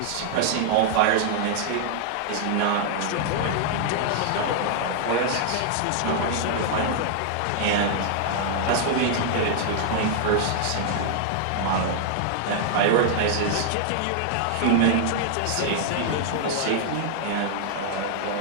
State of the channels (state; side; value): different; both; correlation 0.00